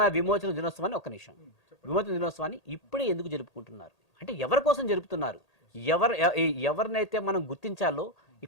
విమోచన దినోత్సవాన్ని విమోచన దినోత్సవాన్ని ఇప్పుడే ఎందుకు జరుపుకుంటున్నారు? అంటే ఎవరి కోసం జరుపుతున్నారు? ఎవరినైతే మనం గుర్తించాలో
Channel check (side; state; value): right; late; 1.8 ms